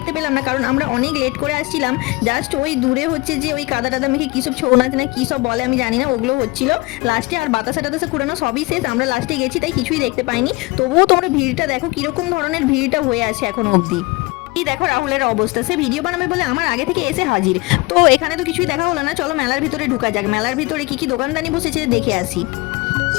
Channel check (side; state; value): right; quieter; 24.0 dB